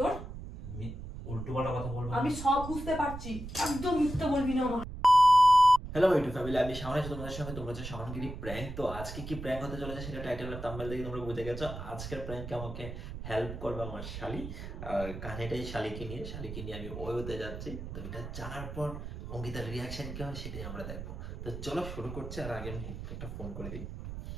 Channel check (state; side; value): noise; right; rumble, 9 dB below the sound